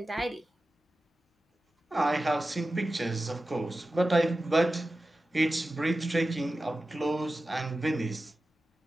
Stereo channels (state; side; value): normal; both; correlation 0.94